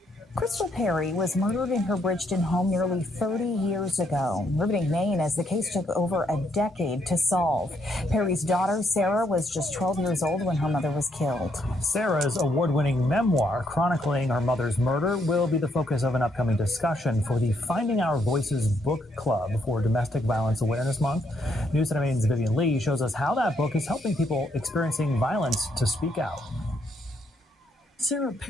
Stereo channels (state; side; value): normal; both; correlation 0.74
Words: Crystal Perry was murdered in her Bridgeton home nearly 30 years ago, riveting Maine as the case took over a decade to solve. Perry's daughter, Sarah, was just 12 years old when her mother was killed. Sarah's award-winning memoir chronicling her mother's murder will be the focus of an upcoming discussion for the Finding Our Voices Book Club for Domestic Violence Awareness Month. News Center Maine's Vivian Lee shows us how that book is helping people experiencing violence to speak out. Sarah